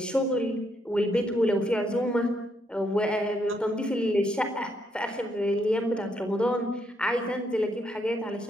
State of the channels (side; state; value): both; normal; correlation 0.75